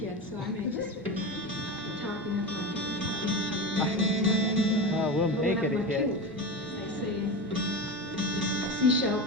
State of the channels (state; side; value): normal; both; correlation 0.23